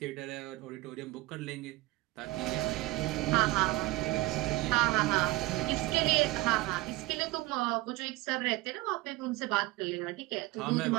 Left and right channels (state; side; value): quieter; left; 20.0 dB